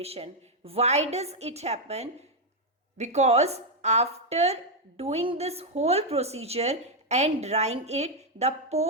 Why does it happen? Because after doing this whole procedure and drying it, the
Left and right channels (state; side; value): normal; both; correlation 0.02